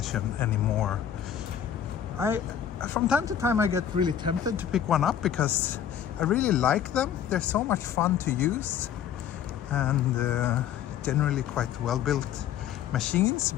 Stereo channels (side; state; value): right; quieter; 9.4 dB